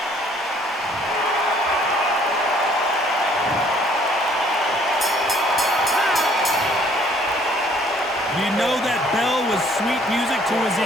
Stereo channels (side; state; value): both; normal; correlation 0.60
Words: You know that bell was sweet music to his